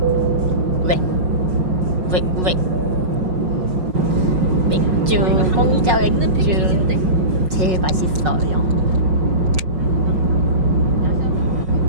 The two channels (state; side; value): late; left; 5.4 ms